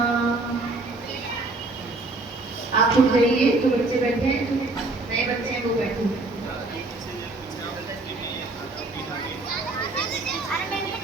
आप उठ जाइए, जो बच्चे बैठे हैं, जो नए बच्चे हैं वो बैठे हैं।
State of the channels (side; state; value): left; quieter; 3.2 dB